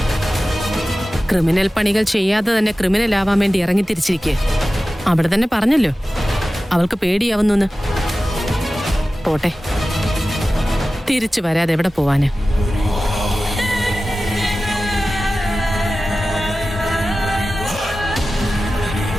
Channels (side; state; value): both; normal; correlation 0.95